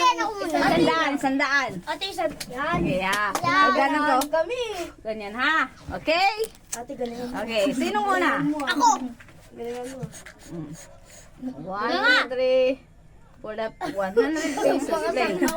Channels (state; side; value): identical; both; correlation 1.00